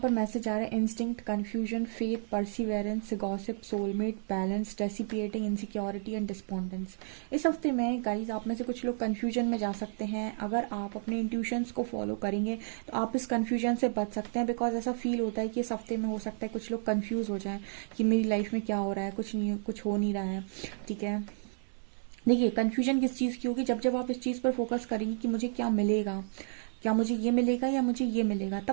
मैसेज आ रहा है instinct, confusion, faith, perseverance, gossip, soulmate, balance, dissipating, insecurity and despondence. इस हफ्ते में गाइस आप में से कुछ लोग कंफ्यूजन में जा सकते हैं। अगर आप अपने इंट्यूशंस को फॉलो करेंगे तो आप इस कंफ्यूजन से बच सकते हैं। बिकॉज ऐसा फील होता है कि इस हफ्ते में हो सकता है कुछ लोग कंफ्यूज हो जाएं कि मेरी लाइफ में क्या हो रहा है, कुछ हो नहीं रहा है। ठीक है, देखिए कन्फ्यूजन किस चीज़ की होगी, जब जब आप इस चीज़ पर फोकस करेंगे कि मुझे क्या मिलेगा, क्या मुझे ये मिलेगा या मुझे ये मिलेगा,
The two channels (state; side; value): silent; left; 57 dB below the other